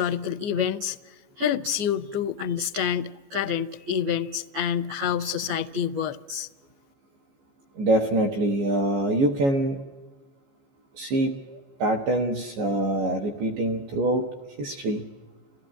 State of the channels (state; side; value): late; left; 14 ms